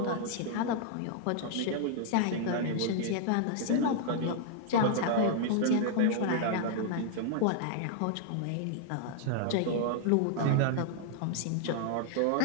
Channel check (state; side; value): different; both; correlation -0.01